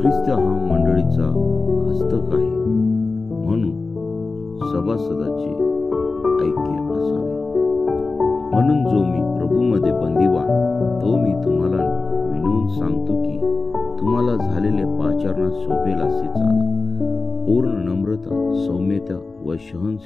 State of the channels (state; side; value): quieter; right; 3.8 dB